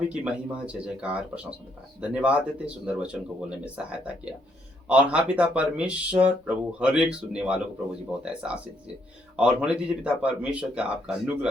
ही की महिमा, जय जयकार, प्रशंसा। धन्यवाद देते, सुंदर वचन को बोलने में सहायता किया। और हाँ पिता परमेश्वर, प्रभु हर एक सुनने वालों को प्रभु जी बहुत ऐसा आशीष दीजिए और होने दीजिए पिता परमेश्वर का आपका अनुग्रह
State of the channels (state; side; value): normal; both; correlation 0.72